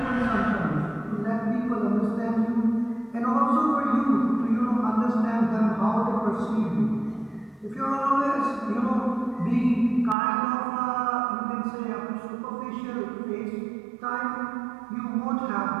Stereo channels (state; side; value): drops out; left; at 10.2 s